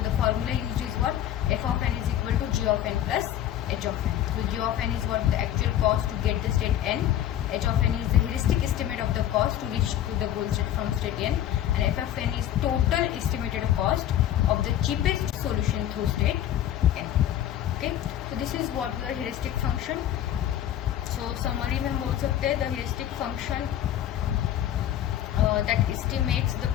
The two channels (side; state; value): right; quieter; 11.6 dB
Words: the formula used is what, F of N is equal to G of N plus H of N. So G of N is what, the actual cost to get the state N, h of n is the heuristic estimate of the cost to reach to the goal state from state n, and f of n is total estimated cost of the cheapest solution through state n. So this is what the heuristic function. So summary में हम बोल सकते हैं the heuristic function that estimates the